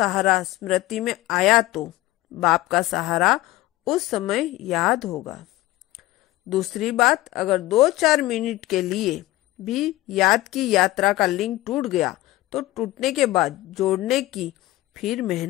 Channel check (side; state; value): right; quieter; 17.3 dB